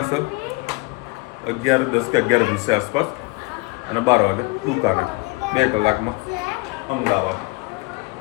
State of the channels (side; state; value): right; quieter; 27.0 dB